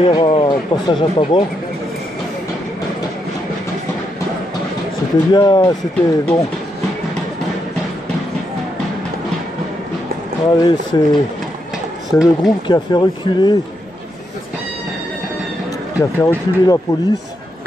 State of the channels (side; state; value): both; normal; correlation 0.81